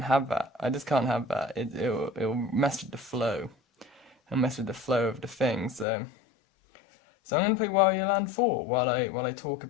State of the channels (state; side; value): drops out; right; at 5.9 s